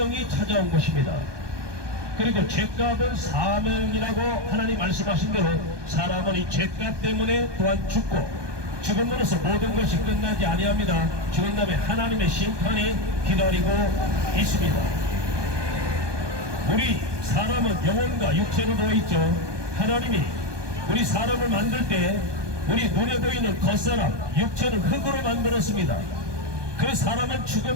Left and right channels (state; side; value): late; left; 1.2 ms